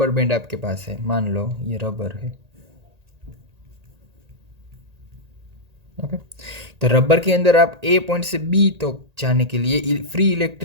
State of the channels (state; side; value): late; left; 1.8 ms